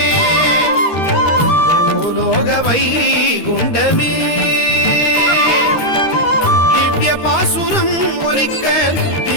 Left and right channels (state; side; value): late; right; 13 ms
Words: பூலோக வைகுண்டமே திவ்ய பாசுரம் ஒலிக்க